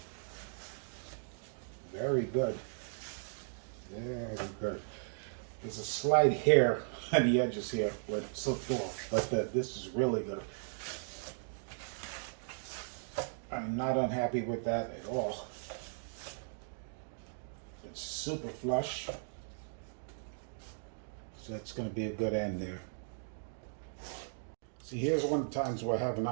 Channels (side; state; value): left; silent; digital silence